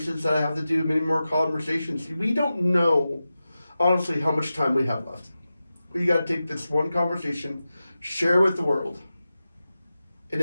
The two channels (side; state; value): both; inverted; correlation -0.93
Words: that I have to do, many more conversations. We don't know, honestly, how much time we have left. But you got to take this one conversation, share with the world. And